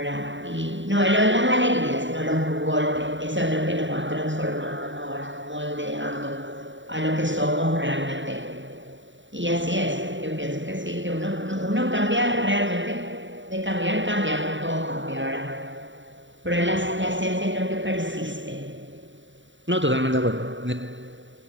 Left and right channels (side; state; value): left; late; 0.55 ms